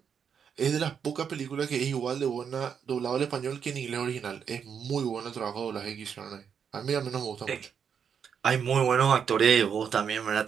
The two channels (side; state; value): left; quieter; 7.3 dB